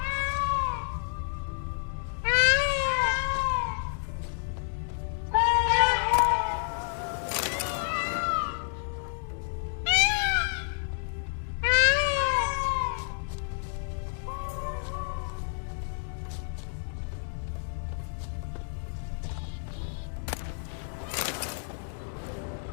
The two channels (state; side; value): silent; right; digital silence